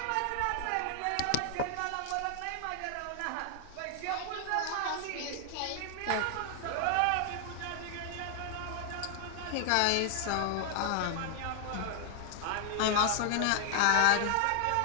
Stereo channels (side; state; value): both; different; correlation 0.00